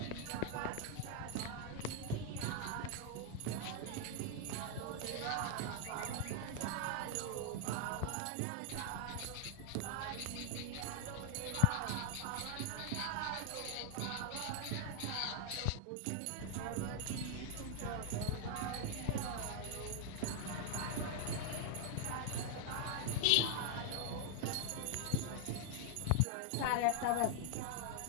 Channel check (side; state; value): both; different; correlation 0.00